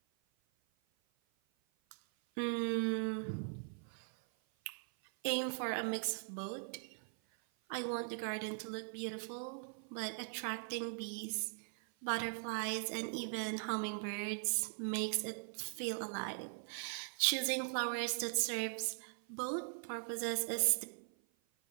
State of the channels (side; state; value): left; silent; 51 dB below the other